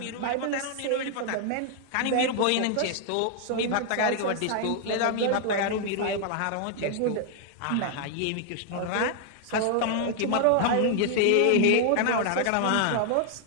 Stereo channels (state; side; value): different; both; correlation 0.00